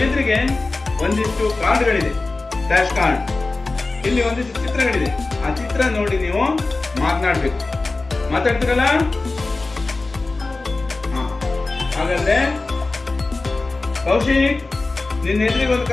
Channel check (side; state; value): right; quieter; 3.4 dB